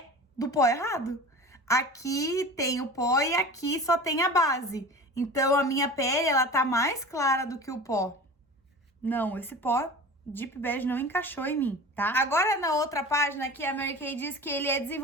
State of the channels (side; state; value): both; normal; correlation 0.36